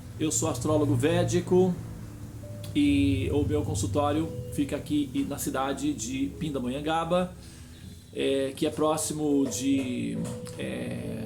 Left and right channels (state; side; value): identical; both; correlation 1.00